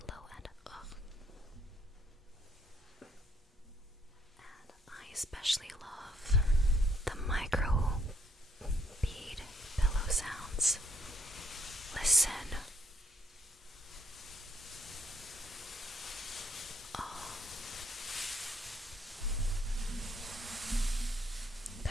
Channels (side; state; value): both; normal; correlation 0.71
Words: and I especially love the micro bead pillow sounds. Listen. Oh.